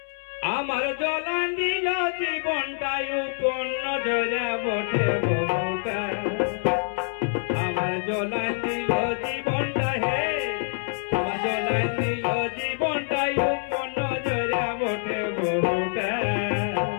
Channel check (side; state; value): right; silent; 61 dB below the other